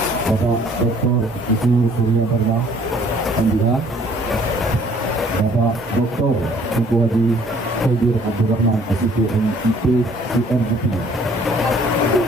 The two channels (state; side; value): normal; both; correlation 0.58